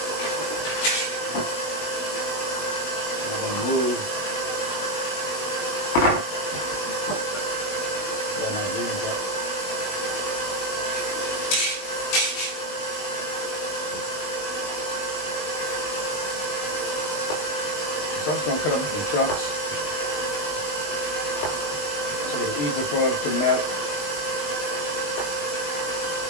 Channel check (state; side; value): late; right; 20 ms